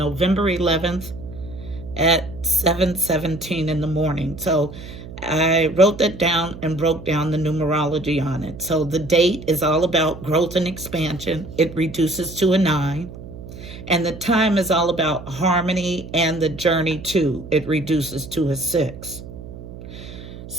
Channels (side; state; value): right; noise; hum, 13 dB below the sound